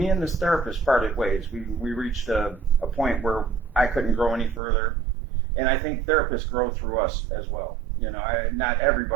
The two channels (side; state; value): left; drops out; at 4.6 s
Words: and this therapist parted ways. We reached a point where I couldn't grow any further, and I think therapists grow through us as well. You know, not